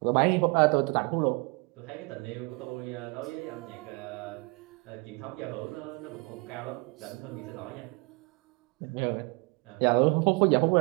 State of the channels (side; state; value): left; quieter; 29.1 dB